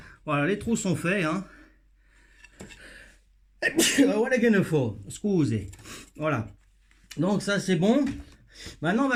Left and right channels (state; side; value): identical; both; correlation 1.00